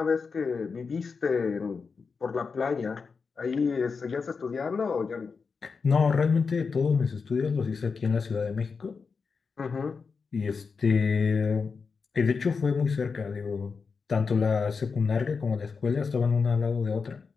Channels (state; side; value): quieter; right; 5.1 dB